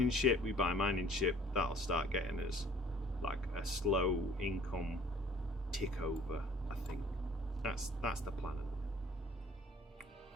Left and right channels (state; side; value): normal; both; correlation 0.54